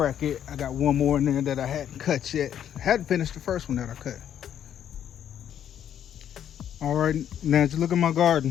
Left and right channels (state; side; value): quieter; right; 9.8 dB